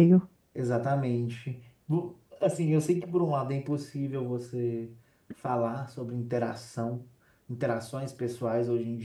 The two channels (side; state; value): both; identical; correlation 1.00